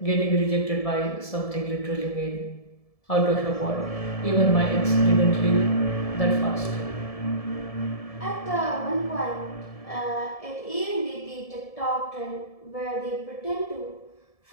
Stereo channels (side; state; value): right; late; 1.7 ms